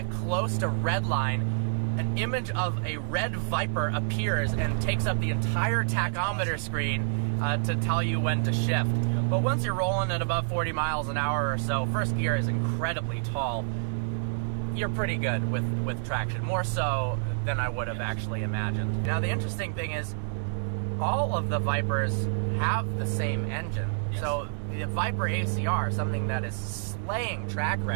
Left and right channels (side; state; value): left; silent; digital silence